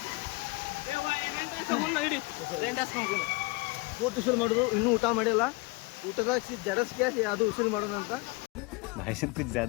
ಪೂರ್ತಿ ಉಸುಲು ಮಾಡೋದು ಇನ್ನೂ ಊಟ ಮಾಡಿಲ್ಲ ಊಟದಾಗ ಜಡಸ್ಗೆ ಅದು ಉಸುಲು ಮಾಡೋಣ ಅಂತ भाई साहब कुछ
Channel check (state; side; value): quieter; right; 25.4 dB